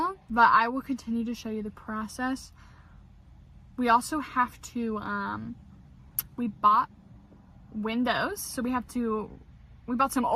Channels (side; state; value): both; identical; correlation 1.00